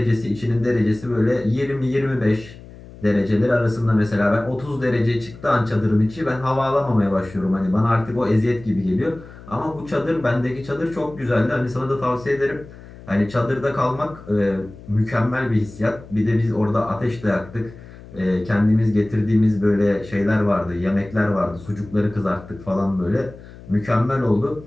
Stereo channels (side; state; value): left; noise; hum, 18 dB below the sound